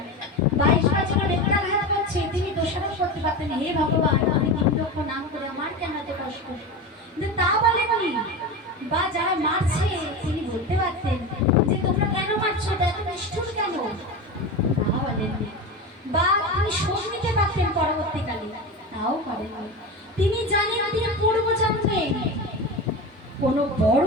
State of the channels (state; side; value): normal; both; correlation 0.24